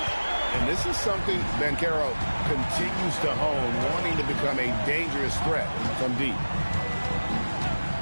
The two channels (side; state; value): both; inverted; correlation -1.00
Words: And this is something Banchero continues to hone, wanting to become a dangerous threat from deep.